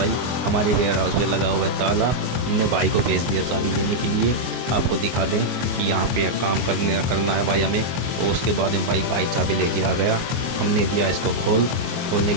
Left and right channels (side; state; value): left; late; 24 ms